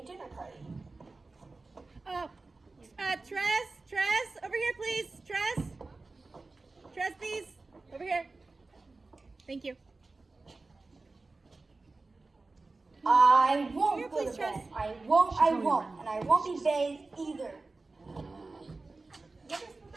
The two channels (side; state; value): left; quieter; 3.5 dB